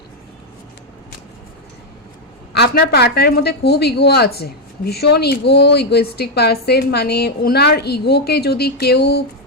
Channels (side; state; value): both; normal; correlation 0.02